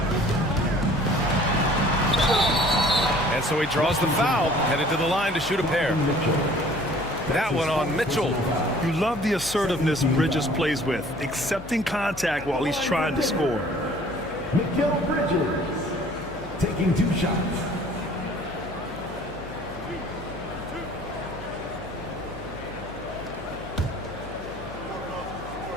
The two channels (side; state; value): left; noise; hum, 15 dB below the sound